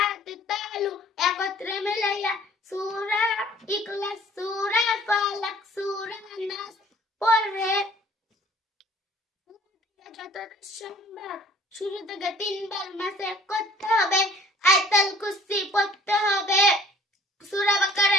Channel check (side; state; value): both; normal; correlation 0.54